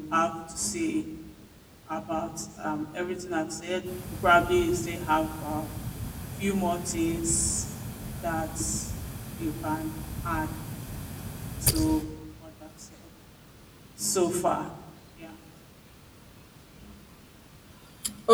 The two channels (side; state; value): both; identical; correlation 1.00